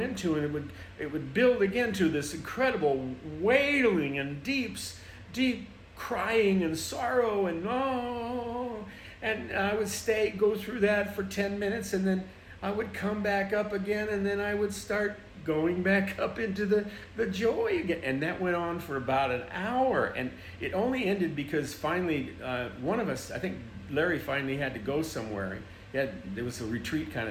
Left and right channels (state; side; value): identical; both; correlation 1.00